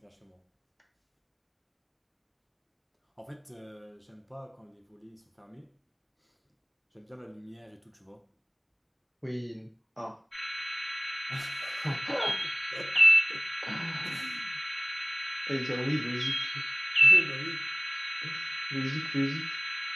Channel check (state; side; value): identical; both; correlation 1.00